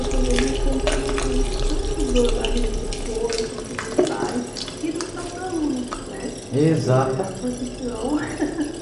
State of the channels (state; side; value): identical; both; correlation 1.00